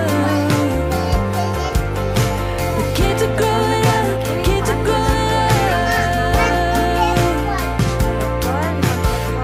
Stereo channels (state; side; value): identical; both; correlation 1.00